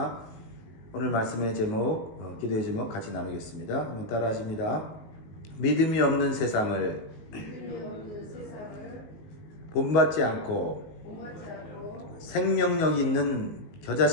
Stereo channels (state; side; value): late; right; 19 ms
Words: 오늘 말씀의 제목, 기도의 제목 같이 나누겠습니다. 한번 따라 하십니다. 믿음이 없는 세상을 본받지 않고 생명력 있는